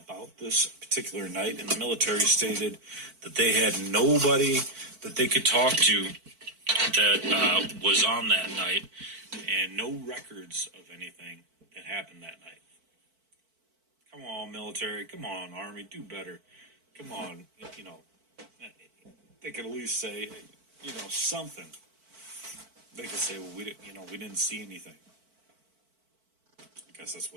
this particular night, and the military stated that they had nobody that they could talk to that was on that night, and no records of anything that happened that night. Come on, military. Come on, Army. Do better. Come on. They could at least say, something. They could say, well, we didn't see anything. I guess that's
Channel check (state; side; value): late; left; 4.5 ms